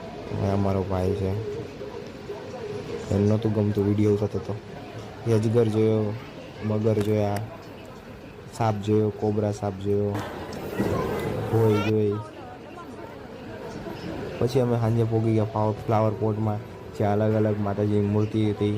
અમારો ભાઈ છે, એને નહોતું ગમતું, વિડીયો થતો હતો. અજગર જોયો, મગર જોયા, સાપ જોયો, કોબરા સાપ જોયો, ભોય જોઈ. પછી અમે સાંજે પહોંચી ગયા ફ્લાવર પોટમાં, જ્યાં અલગ અલગ માતાજીની મૂર્તિ હતી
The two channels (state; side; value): identical; both; correlation 1.00